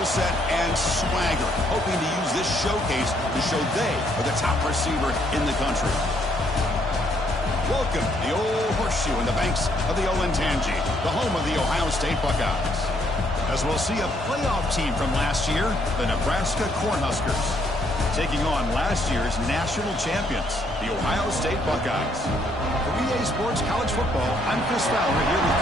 set and swagger, hoping to use this showcase to show they are the top receiver in the country. Welcome to the Old Horseshoe in the banks of the Olentangy, the home of the Ohio State Buckeyes. As we'll see a playoff team from last year, the Nebraska Cornhuskers, taking on last year's national champions, the Ohio State Buckeyes. For EA Sports College Football, I'm Chris Fowler here with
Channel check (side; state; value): both; normal; correlation 0.70